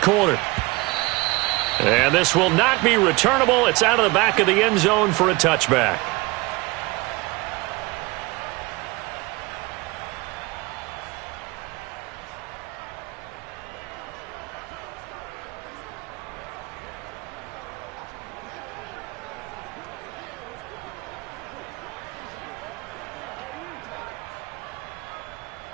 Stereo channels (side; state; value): left; quieter; 23.7 dB